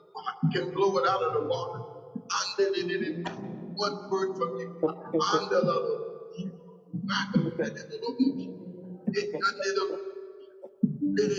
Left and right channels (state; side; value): identical; both; correlation 1.00